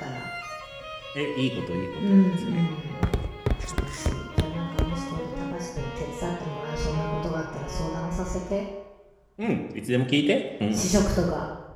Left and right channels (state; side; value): identical; both; correlation 1.00